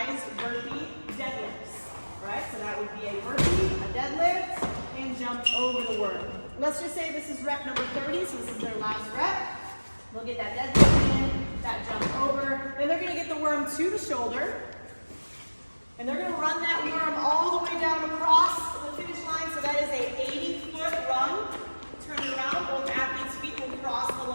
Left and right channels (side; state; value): both; inverted; correlation -1.00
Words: burpee deadlifts. All right, so that would be a burpee, a deadlift, and jump over the worm. Let's just say this is rep number 30, so this is their last rep. They'll get that deadlift in, that jump over. Then they're going to get the worm to the shoulder. And they're going to run that worm all the way down across the finish line. So that is a 80-foot run. Turn it around. Both athletes' feet will cross the